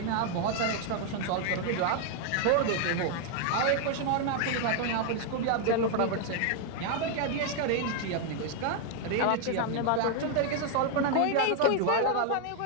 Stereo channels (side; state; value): both; different; correlation 0.00